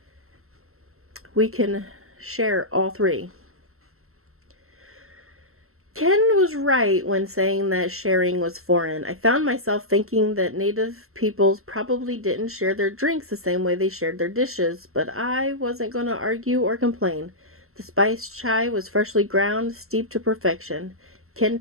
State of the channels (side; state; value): left; late; 0.62 ms